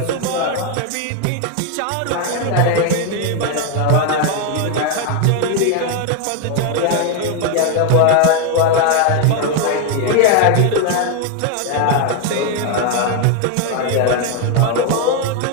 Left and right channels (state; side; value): different; both; correlation 0.01